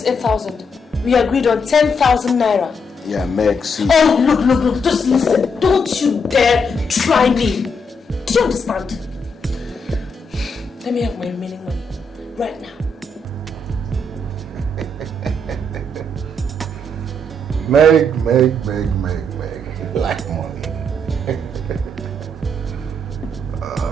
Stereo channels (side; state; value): both; normal; correlation 0.77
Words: 8,000. We agreed on 10,000 naira. Yeah, Meg, see. Oh, look, just listen. Don't you dare try me. Do you understand? Let me have my remaining money right now. Meg. Like money.